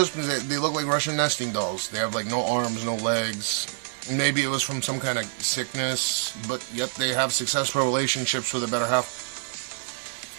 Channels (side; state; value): left; silent; digital silence